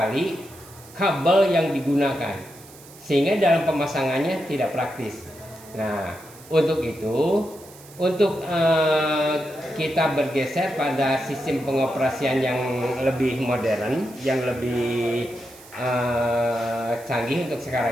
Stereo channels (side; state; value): right; noise; hiss, 21 dB below the sound